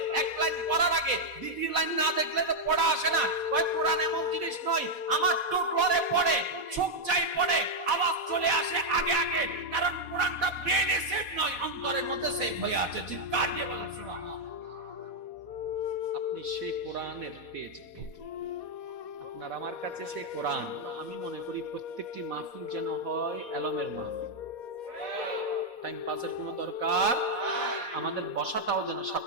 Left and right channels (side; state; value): left; late; 4.2 ms